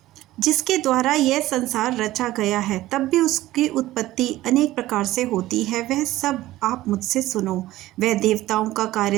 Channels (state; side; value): quieter; left; 16.0 dB